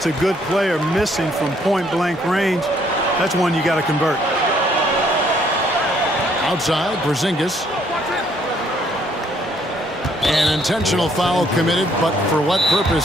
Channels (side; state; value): both; normal; correlation 0.66